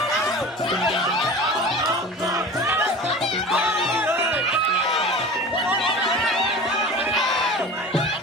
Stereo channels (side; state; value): both; normal; correlation 0.36